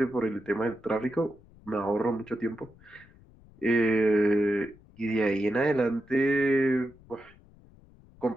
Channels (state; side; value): noise; left; rumble, 25 dB below the sound